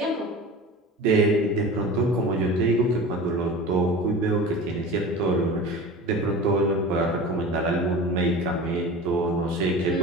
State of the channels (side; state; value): both; normal; correlation 0.35